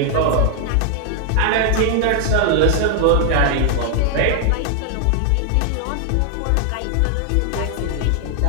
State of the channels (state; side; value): different; both; correlation 0.00